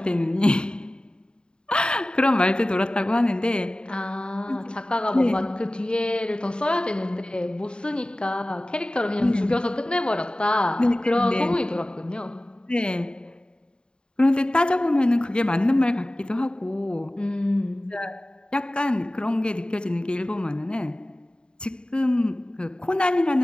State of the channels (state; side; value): late; right; 0.050 ms